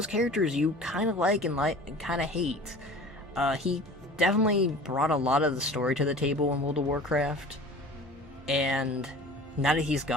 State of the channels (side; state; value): both; normal; correlation 0.41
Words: characters you kind of like and kind of hate. He definitely brought a lot of the story to the table in World of Warcraft, and now that he's